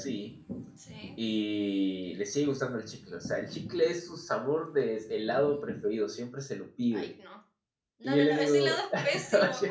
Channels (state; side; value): identical; both; correlation 1.00